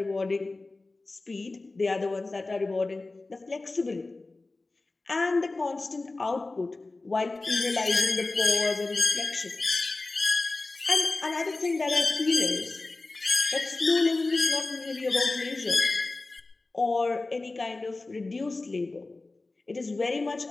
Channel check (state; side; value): quieter; right; 3.3 dB